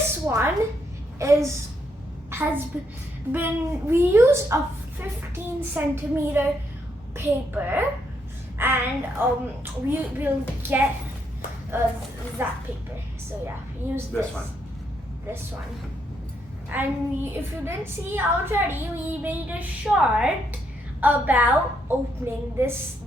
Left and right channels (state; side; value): normal; both; correlation 0.76